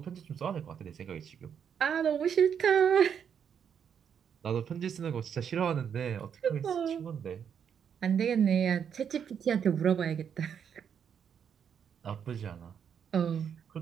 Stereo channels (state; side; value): quieter; left; 7.8 dB